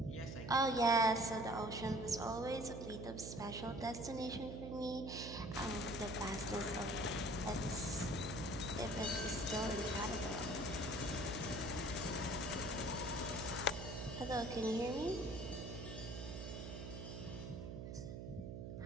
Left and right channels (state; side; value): noise; right; hum, 7 dB below the sound